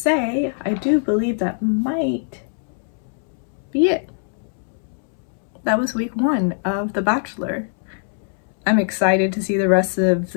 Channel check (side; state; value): right; silent; 64 dB below the other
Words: I do believe that might be it. That was week 1 of The Bachelor. I'm excited to see the rest of